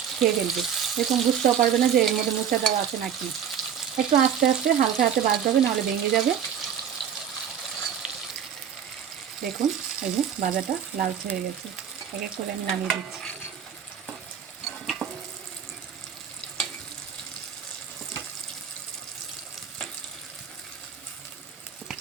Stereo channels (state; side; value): quieter; left; 8.4 dB